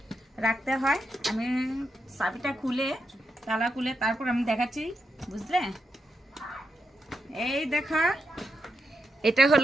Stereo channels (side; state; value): both; normal; correlation 0.85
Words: রাখতে হয়। আমি চাবিটা খুলে, তালা খুলে তারপর আমি দেখাচ্ছি, বুঝলে? এই দেখো, এটা